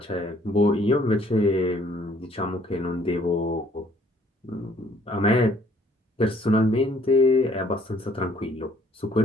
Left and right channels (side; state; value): both; normal; correlation 0.61